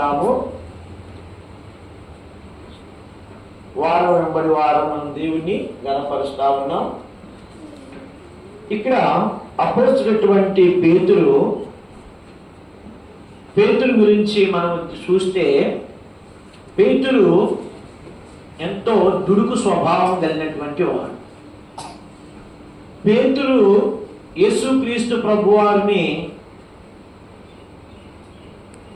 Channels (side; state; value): both; identical; correlation 1.00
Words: వారం వెంబడి వారం మనం దేవుణ్ణి గణపరుస్తా ఉన్నాం. ఇక్కడ అపోస్తలుడైనటువంటి పేతురు గురించి మనం చూస్తే, పేతురు ఎంతో దుడుకు స్వభావం కలిగినటువంటి వాడు. పేతురు యేసుక్రీస్తు ప్రభువారిని